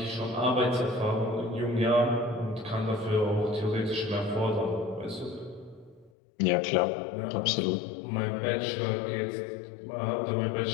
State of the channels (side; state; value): right; drops out; at 6.1 s